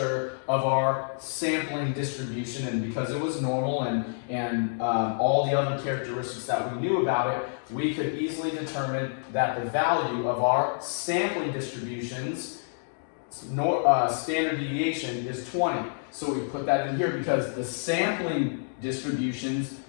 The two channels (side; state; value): right; silent; digital silence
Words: of our sampling distribution, and because it was normal and all the other characteristics that we knew about it, we could easily determine that the value of our sampling distributions standard deviation is 20. So we put that in here because the sampling distributions